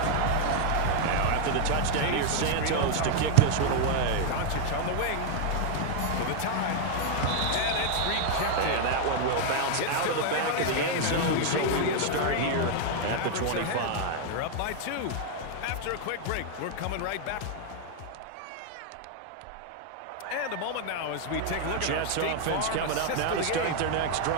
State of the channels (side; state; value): both; different; correlation 0.00